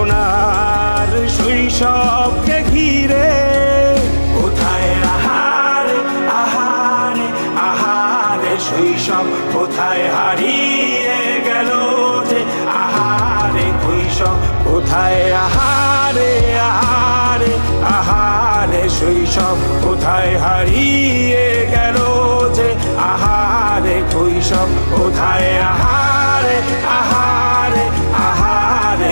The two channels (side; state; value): both; inverted; correlation -1.00